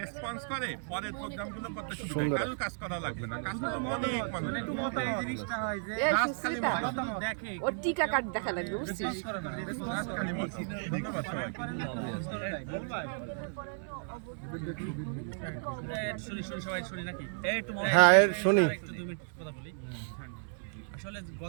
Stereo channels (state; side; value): silent; left; digital silence